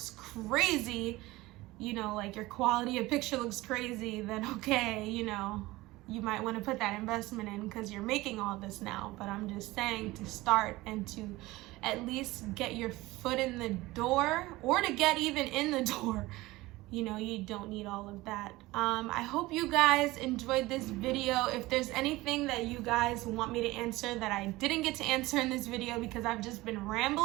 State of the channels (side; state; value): left; quieter; 19.5 dB